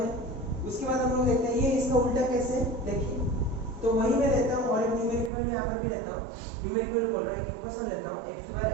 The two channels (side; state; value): left; drops out; at 5.3 s